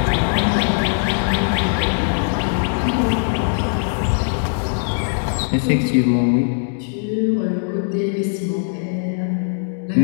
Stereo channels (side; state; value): right; silent; digital silence